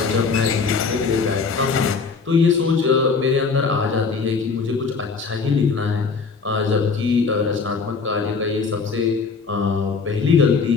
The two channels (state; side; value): quieter; right; 4.9 dB